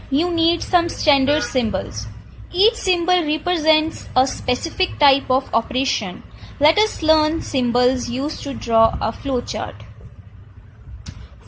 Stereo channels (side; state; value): both; identical; correlation 1.00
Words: you need some standard symbols. Each symbol represents a specific type of operation. Let us learn symbols used to draw a flowchart.